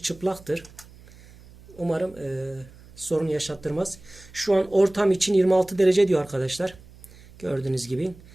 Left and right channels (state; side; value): noise; right; hum, 22 dB below the sound